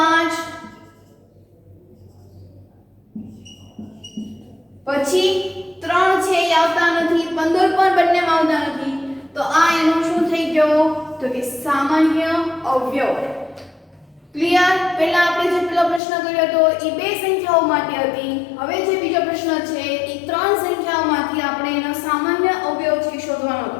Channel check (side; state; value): right; drops out; at 16.0 s